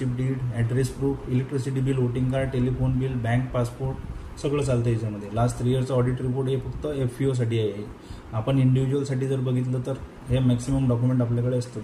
deed, address proof, electricity bill, voting card, telephone bill, bank passport सगळं चालतं याच्यामध्ये. लास्ट 3 इयरचं ऑडिट रिपोर्ट हे फक्त FPOसाठी आहे. आपण इंडिव्हिज्युअलसाठी जर बघितलं तर हे मॅक्सिमम डॉक्युमेंट आपल्याकडे असतात.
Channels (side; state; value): both; identical; correlation 1.00